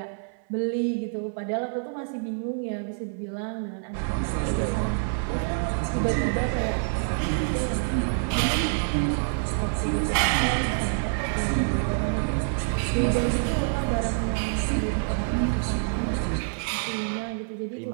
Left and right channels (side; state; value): left; silent; 57 dB below the other